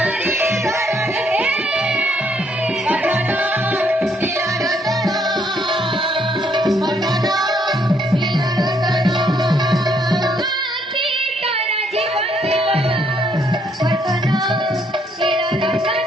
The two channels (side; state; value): both; normal; correlation 0.70